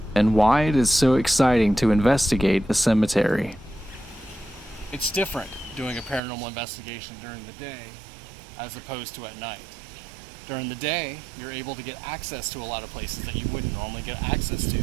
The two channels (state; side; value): drops out; left; at 6.2 s